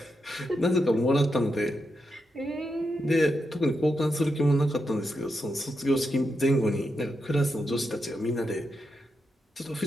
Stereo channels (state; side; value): normal; both; correlation 0.85